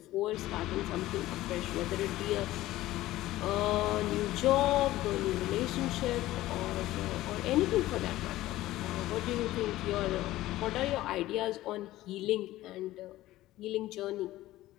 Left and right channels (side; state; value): right; quieter; 16.1 dB